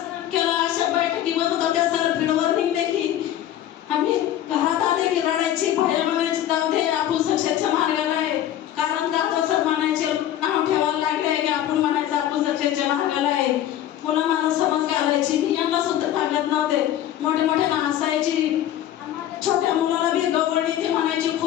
केलं. अशा बैठकी होत होत्या सर फील्डवर निघले की आम्ही घरात आले की रडायची, बाहेर म्हणायची जाऊ दे आपण सक्सेसच्या मार्गाला आहे. कारण जातो सर म्हणायचे, नाव ठेवायला लागले की आपण म्हणायचं आपण सक्सेसच्या मार्गाला आहे. पुन्हा मला समज घालायची, मी यांना सुद्धा सांगत नव्हते. मोठे मोठे हसायची. छोट्या मुलाला बी गवळणी ती म्हणायची,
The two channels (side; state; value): right; quieter; 11.9 dB